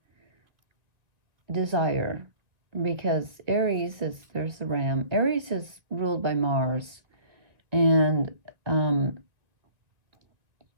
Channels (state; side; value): late; left; 2.0 ms